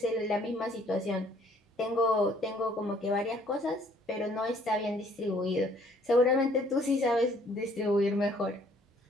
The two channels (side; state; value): both; normal; correlation 0.61